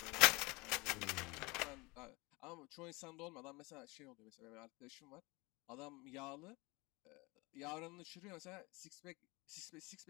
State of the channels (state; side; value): quieter; right; 25.0 dB